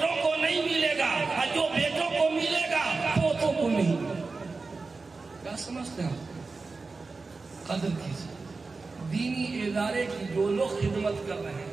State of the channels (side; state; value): left; quieter; 4.0 dB